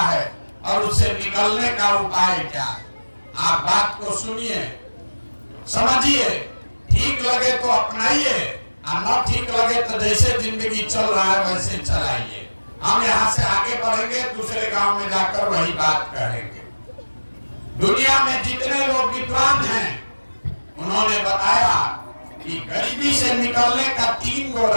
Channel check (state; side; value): inverted; both; correlation -1.00